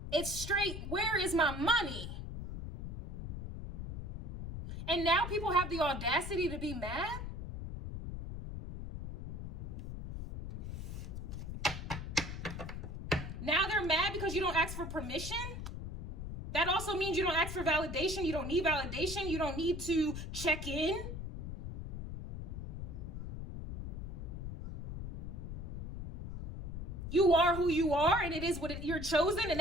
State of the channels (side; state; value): left; noise; rumble, 6 dB below the sound